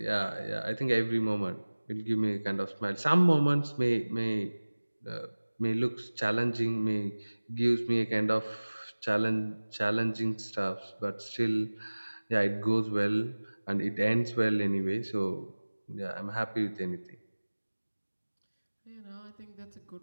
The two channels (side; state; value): both; inverted; correlation -1.00